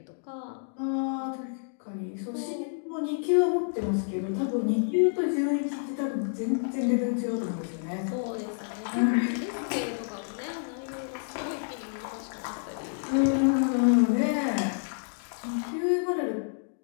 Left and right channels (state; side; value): silent; right; digital silence